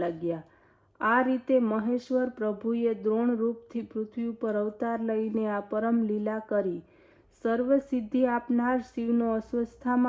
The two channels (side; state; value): both; identical; correlation 1.00